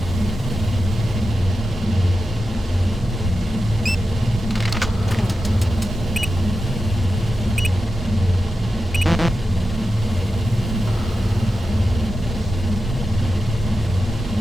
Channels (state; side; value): normal; both; correlation 0.90